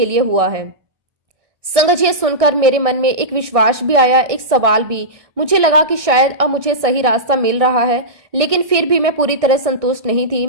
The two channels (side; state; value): left; late; 1.6 ms